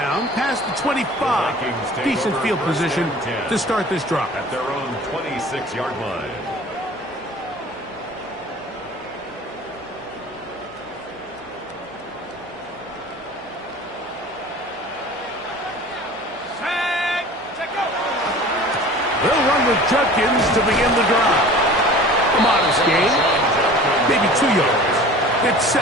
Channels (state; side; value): noise; right; hum, 29 dB below the sound